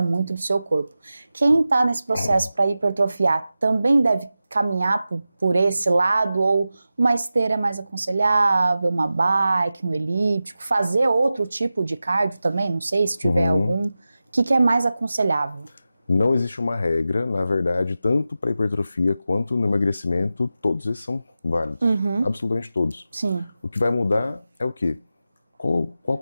muito do seu corpo. Quem está nesse processo para hipertrofiar também deve caminhar por esse lado, ou uma esteira é mais aconselhável, uma bike, um elíptico, fazer outro tipo de cardio também, não sei se tiver algum. O que é mais aconselhável? Não existe uma regra, na verdade, tanto para hipertrofia quanto no emagrecimento, todos esses são válidos, absolutamente todos. Sim. O que vai mudar é o quê? Qual a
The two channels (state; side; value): inverted; both; correlation -0.93